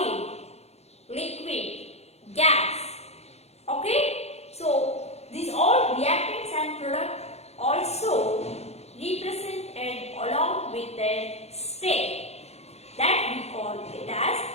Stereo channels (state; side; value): late; right; 0.31 ms